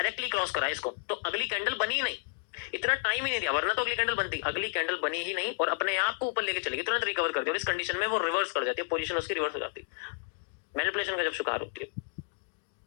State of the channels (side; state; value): right; silent; digital silence